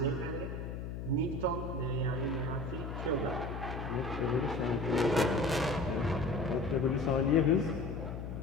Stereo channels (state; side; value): noise; left; hum, 6 dB below the sound